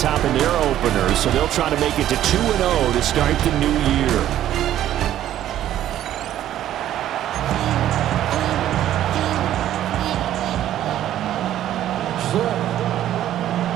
in their openers, so they'll try to make it to 2-0 to start the new year.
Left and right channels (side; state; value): left; quieter; 12.2 dB